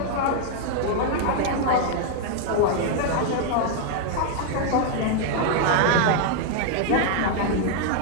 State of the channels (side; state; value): both; different; correlation 0.00